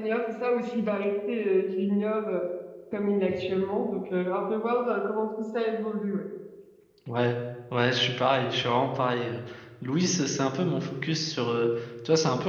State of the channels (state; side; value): identical; both; correlation 1.00